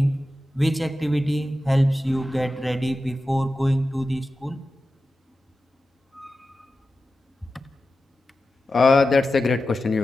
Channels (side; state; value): both; normal; correlation 0.93